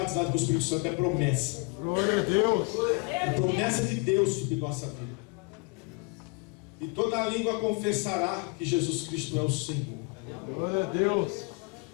com o Espírito Santo. É promessa. Glória a Deus. É promessa de Deus sobre nossa vida. E toda a língua confessará que Jesus Cristo é o Senhor. Glória a Deus.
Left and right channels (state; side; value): quieter; right; 29.7 dB